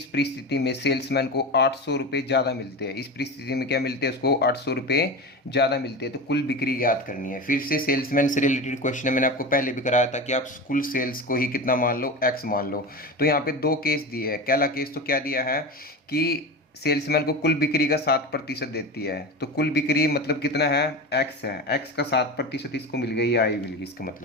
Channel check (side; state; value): both; normal; correlation 0.25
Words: परिस्थिति में सेल्समैन को 800 रुपये ज़्यादा मिलते हैं। इस परिस्थिति में क्या मिलते हैं उसको, 800 रुपये ज़्यादा मिलते हैं। तो कुल बिक्री याद करनी है। फिर से सेल्समैन से रिलेटेड क्वेश्चन है, मैंने आपको पहले भी कराया था कि आप कुल सेल्स को ही कितना मान लो, एक्स मान लो। तो यहाँ पे 2 केस दिए हैं। पहला केस तो क्या दिया है कि सेल्समैन को कुल बिक्री का 7% देती है, तो कुल बिक्री मतलब कितना है, एक्स है, एक्स का 7% इसको मिल गई, आई मिल गई, इसका